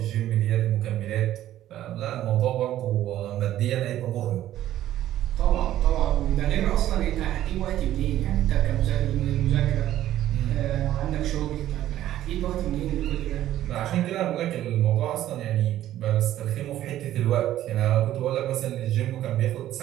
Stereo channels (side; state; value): left; quieter; 13.0 dB